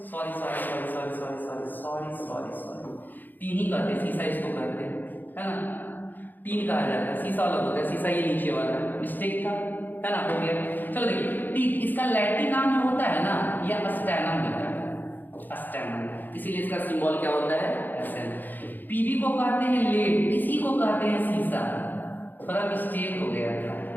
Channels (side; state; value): right; late; 0.088 ms